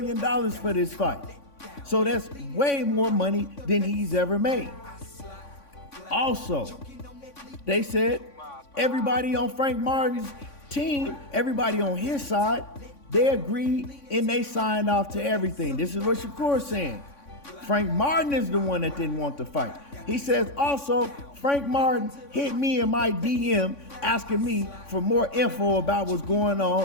for this fight. So that's way more money than he's ever made. Also, they said everybody on Frank Martin's team, everybody on his side, they agreed and they signed off to everything. This is what Shakur's saying. Frank Martin is the one that didn't want to fight. He says also, Frank Martin hit me in my DM asking me for more info about what's going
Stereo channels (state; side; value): late; right; 3.5 ms